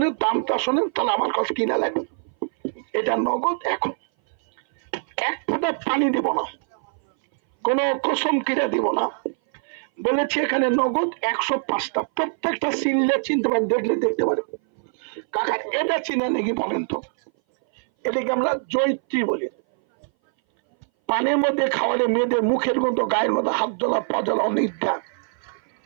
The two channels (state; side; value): silent; left; 59 dB below the other